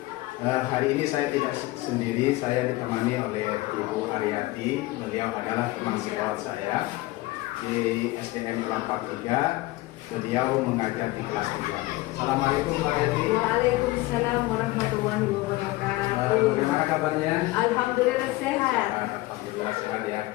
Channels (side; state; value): right; quieter; 19.6 dB